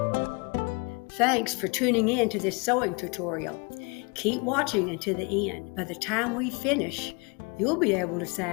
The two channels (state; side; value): quieter; right; 31.0 dB